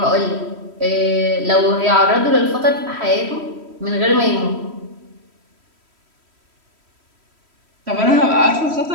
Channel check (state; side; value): late; left; 3.1 ms